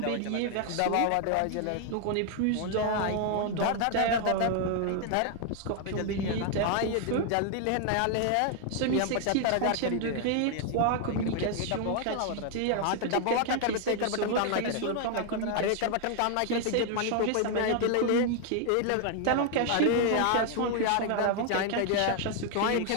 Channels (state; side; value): different; both; correlation 0.00